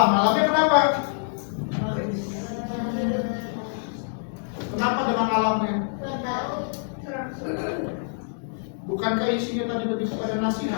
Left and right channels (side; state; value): right; silent; digital silence